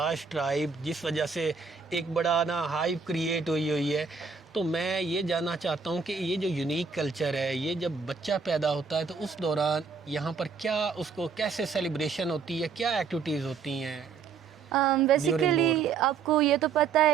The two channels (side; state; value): left; quieter; 5.4 dB